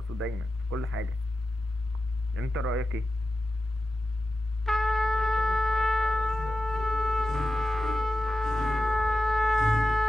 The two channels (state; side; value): normal; both; correlation 0.92